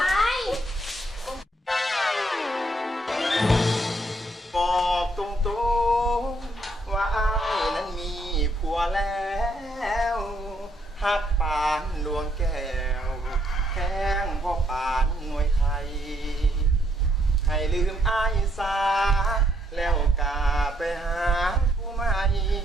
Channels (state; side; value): normal; both; correlation 0.72